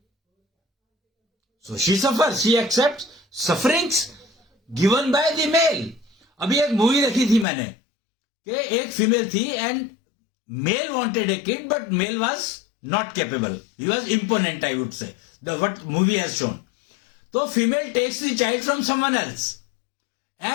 So she suffers. She accepts sufferings given by the male. अभी एक मूवी देखी थी मैंने कि एक फीमेल थी and male wanted a kid but male was not capable. He was imponent, I would say. What movie has shown. So female takes the child from someone else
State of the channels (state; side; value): drops out; right; at 7.5 s